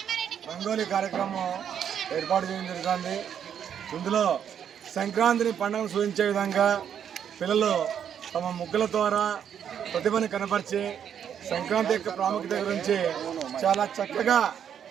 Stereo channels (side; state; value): left; quieter; 8.7 dB